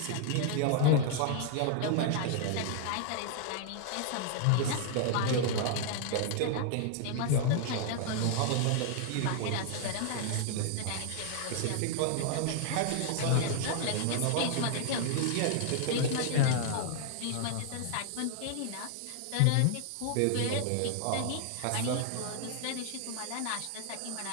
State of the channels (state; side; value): different; both; correlation 0.00